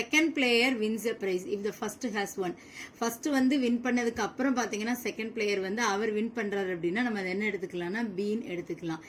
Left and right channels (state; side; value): identical; both; correlation 1.00